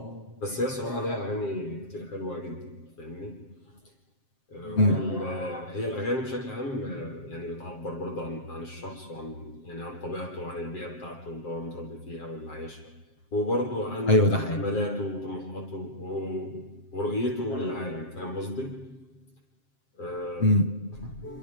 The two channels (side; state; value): right; late; 7.5 ms